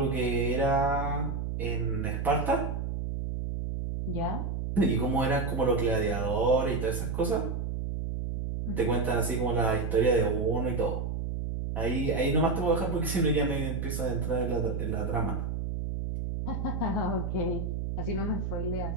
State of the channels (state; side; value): noise; right; hum, 3 dB below the sound